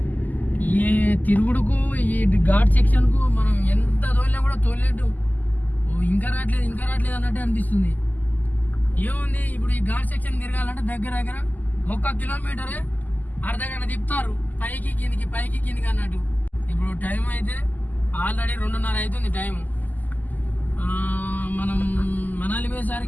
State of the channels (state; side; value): late; right; 0.082 ms